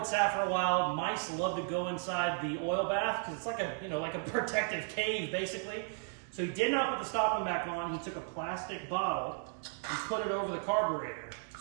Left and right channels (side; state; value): left; silent; 55 dB below the other